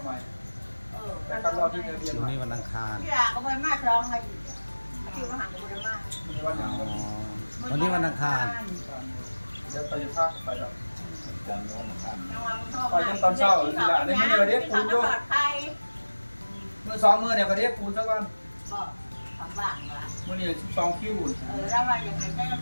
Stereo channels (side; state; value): both; inverted; correlation -1.00